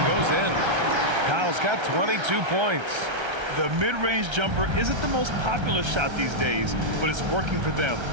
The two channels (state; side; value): late; left; 1.3 ms